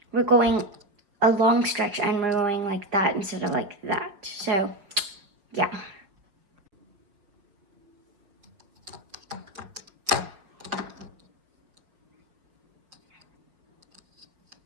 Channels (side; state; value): left; late; 5.1 ms